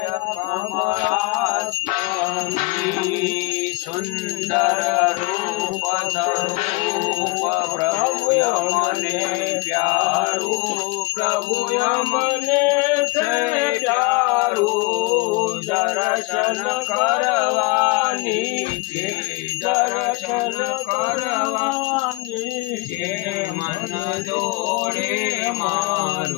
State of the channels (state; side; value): quieter; right; 23.2 dB